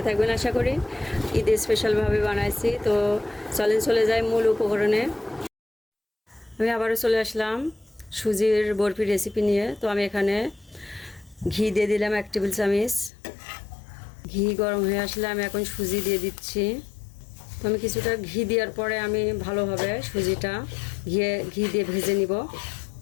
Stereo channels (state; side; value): drops out; right; at 13.1 s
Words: থাকবেন আশা করি। ঈদে স্পেশালভাবে বানাইছি। তো চলে যাই মূল উপকরণে। আমি আবারও চলে আসলাম সুজির বরফির রেসিপি নিয়ে। তো আমি এখানে ঘি দিয়ে দিলাম 1 টেবিল চামচ। ঘি গরম হয়ে আসলে আমি এখন সুজি দিয়ে দিচ্ছি। তো আমি কিছুটা ঘি দেওয়ার পরে আমি ভালোভাবে সুজিটা ঘি দিয়ে ভেজে নিব।